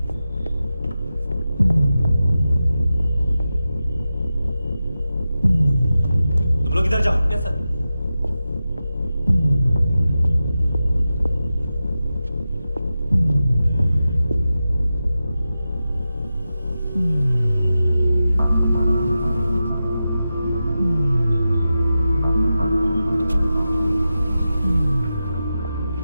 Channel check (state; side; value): inverted; both; correlation -0.92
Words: तुम लोग इधर जाओ। Yes sir.